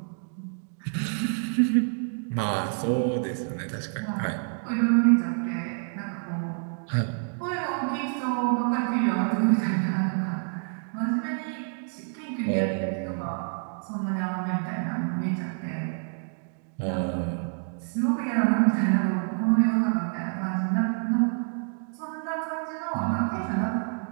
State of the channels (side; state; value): left; silent; 56 dB below the other